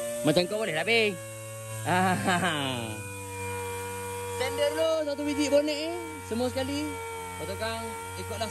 Macam kau boleh lah, Bing. Sender dulu satu biji bonet ni. Semua sekali. Lepas tu kan,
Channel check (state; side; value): identical; both; correlation 1.00